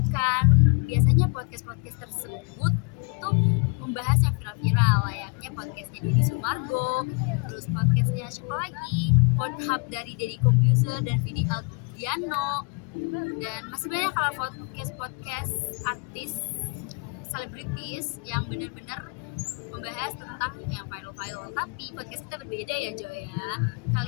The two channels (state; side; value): quieter; right; 32.1 dB